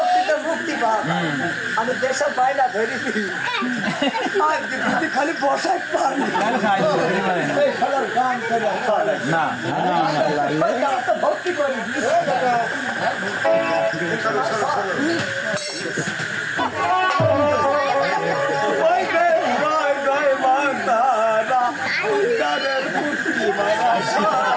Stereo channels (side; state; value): both; identical; correlation 1.00